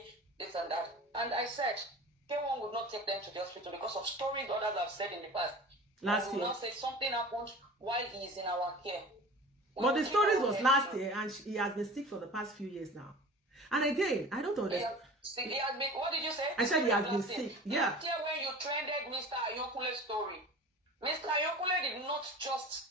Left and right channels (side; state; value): both; normal; correlation 0.38